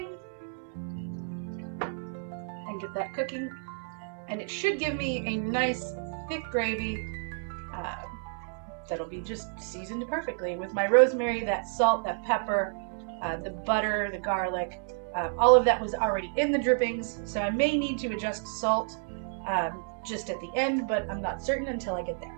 and get that cooking. And it should give me a nice thick gravy that'll be just seasoned perfectly with my rosemary, that salt, that pepper, the butter, the garlic. All of that was already in the drippings, so I may need to adjust salt just at the end, but I'm not certain until I get there.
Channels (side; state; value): left; silent; digital silence